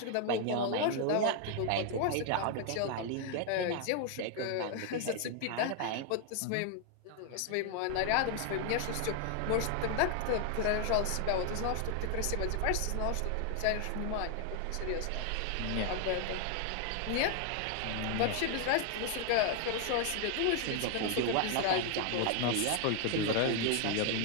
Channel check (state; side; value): different; both; correlation 0.00